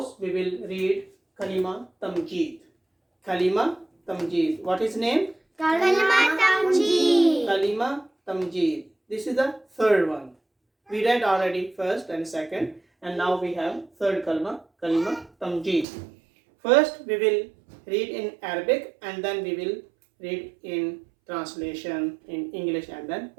we will read Kalimah Tamjeed. Kalimah Tamjeed. What is name? Kalimah Tamjeed. Kalimah Tamjeed. This is the third one. We read already first and second, and now we have third Kalimah Tamjeed. First we will read in Arabic and then we will read in translation in English and then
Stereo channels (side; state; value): left; drops out; at 15.9 s